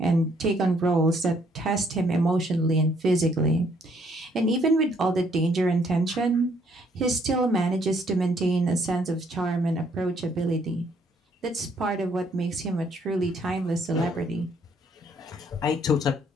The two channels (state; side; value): normal; both; correlation 0.67